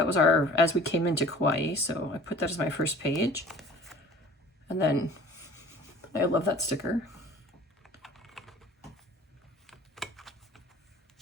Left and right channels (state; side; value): normal; both; correlation 0.47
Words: was as we came into Kauai. So I put that as my first page. And then I love that sticker.